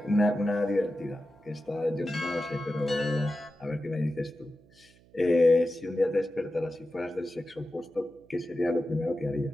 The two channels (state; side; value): noise; right; hum, 28 dB below the sound